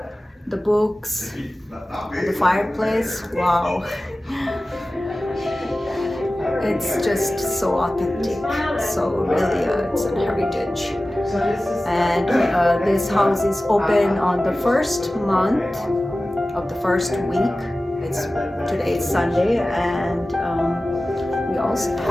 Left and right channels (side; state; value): both; normal; correlation 0.96